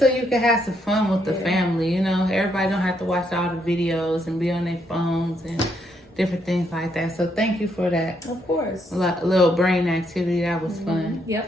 you can have some fun with the family. Everybody don't have to watch all the videos and be on their phones and different things like that. So thank you for that. Of course. A little brain activity. That was fun.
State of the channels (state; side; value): normal; both; correlation 0.75